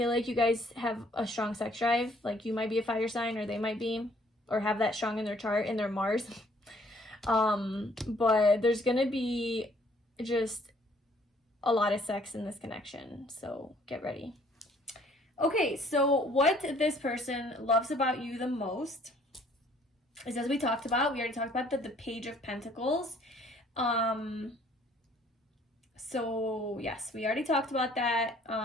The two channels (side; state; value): both; normal; correlation 0.61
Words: like you guys have a strong sex drive. Like, you might be a fire sign, or they might be, or have that strong in their chart, in their Mars. But there's going to be just a lot of sex in this connection. So get ready. Okay, so what this person loves about you the most is, as we talked about, we already talked about the Page of Pentacles. So yes, we already talked about that.